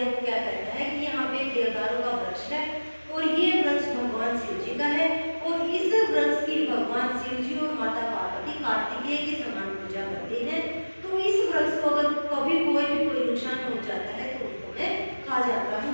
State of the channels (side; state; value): both; inverted; correlation -1.00